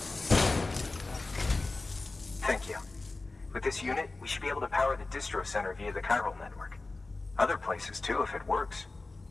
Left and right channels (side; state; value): right; quieter; 3.4 dB